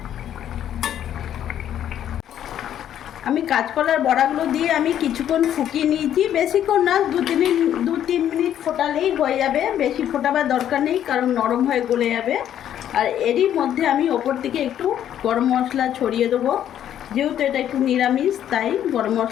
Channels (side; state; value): right; quieter; 10.6 dB